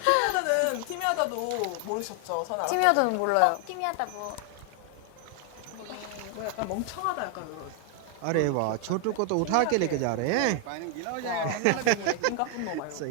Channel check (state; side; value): different; both; correlation 0.00